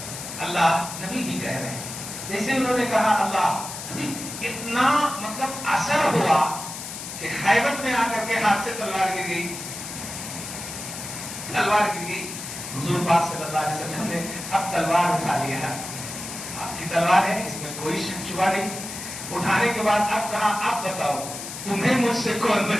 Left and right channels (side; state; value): left; noise; hiss, 9 dB below the sound